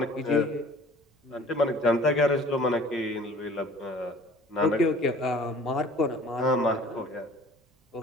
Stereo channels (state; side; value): normal; both; correlation 0.48